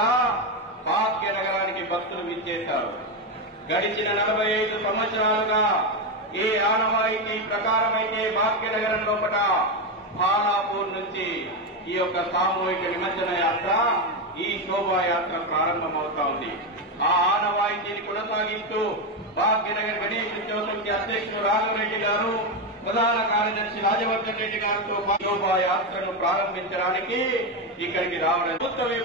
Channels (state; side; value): normal; both; correlation 0.10